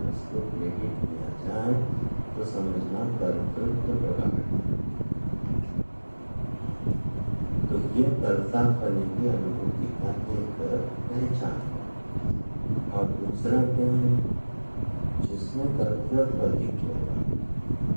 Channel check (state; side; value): inverted; both; correlation -1.00